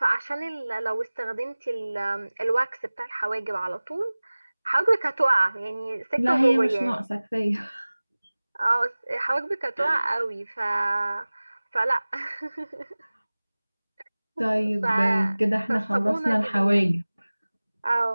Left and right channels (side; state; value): both; inverted; correlation -0.99